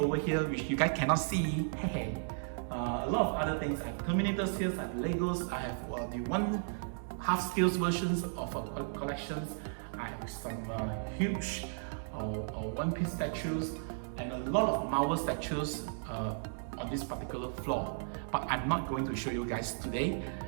here, which you guys cannot see, a lot of other things. I have Terminators here, I have Legos, I have the one half scale versions of collections. I have some huge One Piece statues and a lot of Marvel statues on this particular floor. But I'm not going to show you guys today.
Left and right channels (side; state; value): left; silent; digital silence